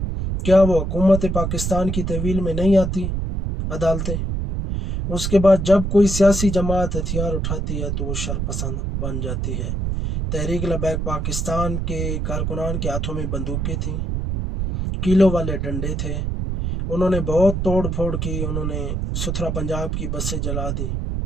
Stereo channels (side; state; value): right; noise; rumble, 1 dB below the sound